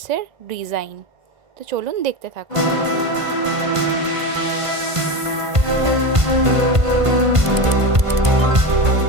ডিজাইন। তো চলুন দেখতে থাকুন।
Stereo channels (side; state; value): left; late; 1.5 ms